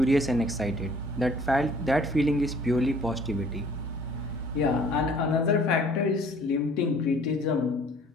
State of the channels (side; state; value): both; normal; correlation 0.55